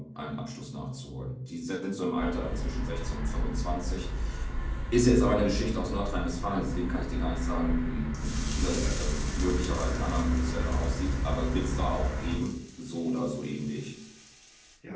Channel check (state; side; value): identical; both; correlation 1.00